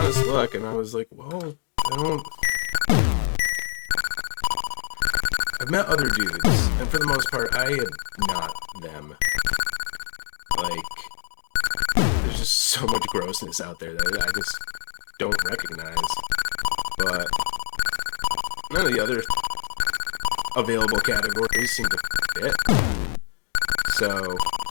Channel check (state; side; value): silent; right; digital silence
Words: look, and I was like, well, I've met other dudes, and for the most part, I am not them. Like, there's just so much grossness out there that I just don't recognize. But none of the other available categories seem to fit. So